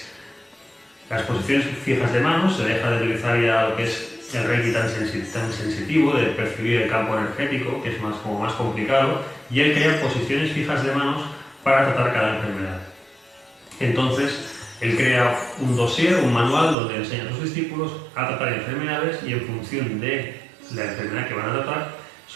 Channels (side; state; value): left; drops out; at 16.8 s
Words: las posiciones fijas de manos, se deja de utilizar ya lo que es el Reiki tan sensitivo, de percibir el campo energético, que es como más complicado, y él crea posiciones fijas de manos para tratar cada enfermedad. Entonces, él crea un dossier, un manual, donde enseña a sus discípulos a tratar enfermedades y en función de la enfermedad que van a tratar,